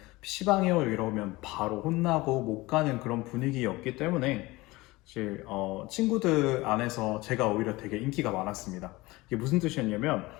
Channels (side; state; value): right; quieter; 21.0 dB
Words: PC방이요 이러면 바로 혼나고 못 가는 그런 분위기였기 때문에 사실 친구들 안에서 제가 오히려 되게 인기가 많았습니다. 이게 무슨 뜻이었냐면